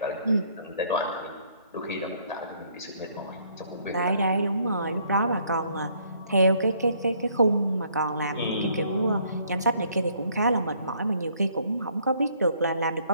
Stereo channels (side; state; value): both; inverted; correlation -0.64